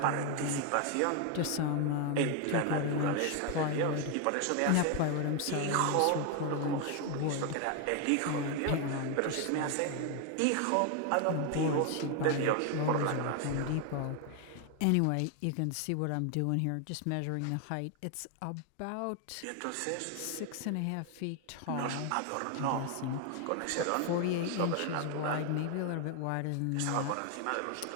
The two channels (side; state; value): both; different; correlation 0.01